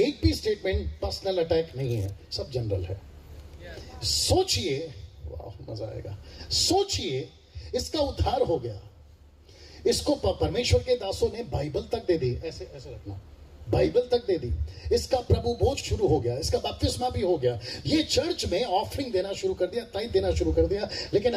भी स्टेटमेंट पर्सनल अटैक नहीं है, सब जनरल है। सोचिए, वाह मजा आएगा। सोचिए, इसका उद्धार हो गया, इसको परमेश्वर के दासों ने बाइबल तक दे दी, ऐसे ऐसे रखना, बाइबल तक दे दी, इसका प्रभु बोझ शुरू हो गया, इसका बपतिस्मा भी हो गया, ये चर्च में ऑफरिंग देना शुरू कर दिया, टाइम देना शुरू कर दिया, लेकिन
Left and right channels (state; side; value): identical; both; correlation 1.00